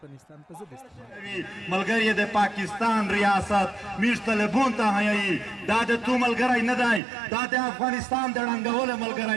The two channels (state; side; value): drops out; left; at 7.0 s